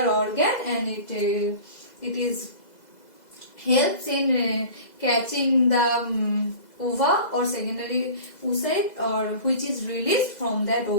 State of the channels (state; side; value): late; right; 2.0 ms